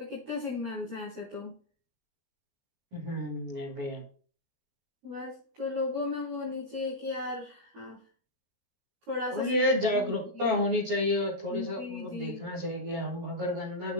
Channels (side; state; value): left; late; 16 ms